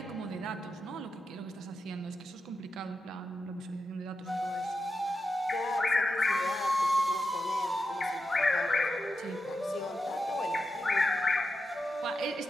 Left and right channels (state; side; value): normal; both; correlation 0.89